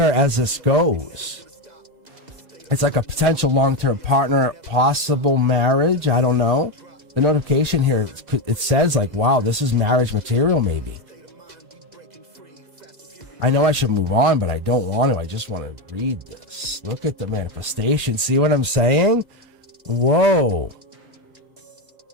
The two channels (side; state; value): left; late; 2.1 ms